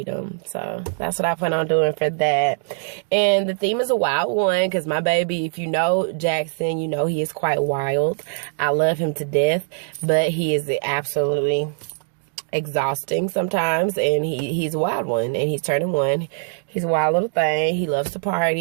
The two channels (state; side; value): silent; left; digital silence